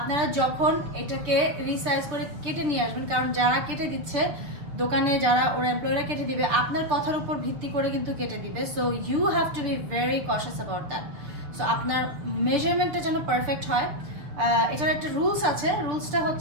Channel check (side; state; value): left; late; 6.6 ms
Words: যখন এটাকে রিসাইজ করে কেটে নিয়ে আসবেন, কারণ যারা কেটে দিচ্ছে দোকানে, যারা ওরা এমপ্লয়িরা কেটে দিবে আপনার কথার উপর ভিত্তি করে কিন্তু কেটে দিবে। So you have to be very cautious about that. So আপনার মেজারমেন্টটা যেন পারফেক্ট হয়। এটার একটা রুলস আছে। রুলসটা